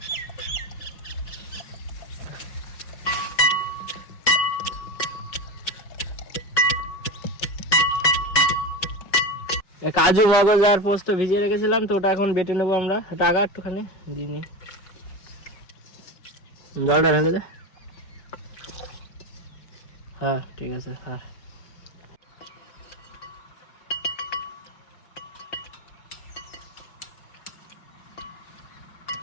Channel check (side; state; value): right; late; 5.4 ms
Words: কাজু মগজ আর পোস্ত ভিজিয়ে রেখেছিলাম, তো ওটা এখন বেটে নেবো আমরা। ওটা আগা একটুখানি দিয়ে নি, জলটা ঢেলে দে। হ্যাঁ ঠিক আছে। হ্যাঁ